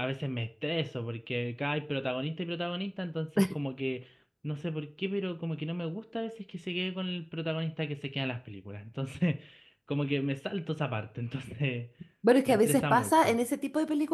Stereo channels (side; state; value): both; identical; correlation 1.00